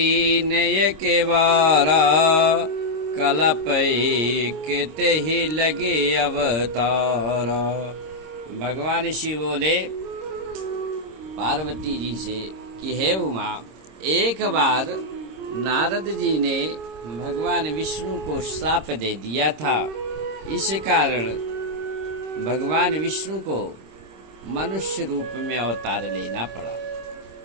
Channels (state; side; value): late; left; 26 ms